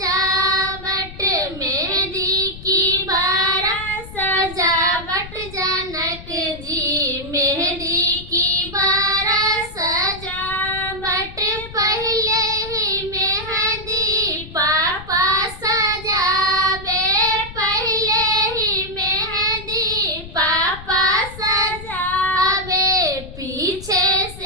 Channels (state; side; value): noise; left; rumble, 14 dB below the sound